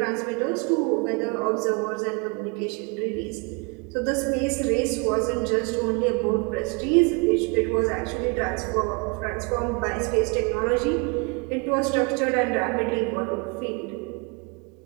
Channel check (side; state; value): left; quieter; 32.0 dB